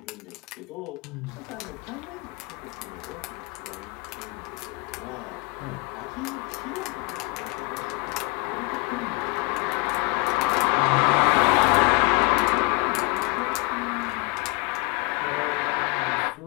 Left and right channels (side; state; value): right; quieter; 25.7 dB